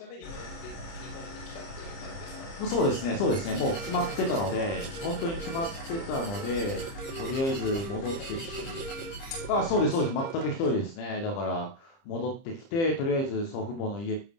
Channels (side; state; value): right; late; 30 ms